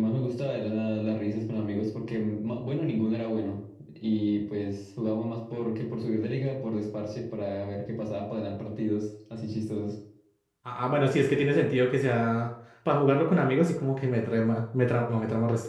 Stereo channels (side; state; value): both; identical; correlation 1.00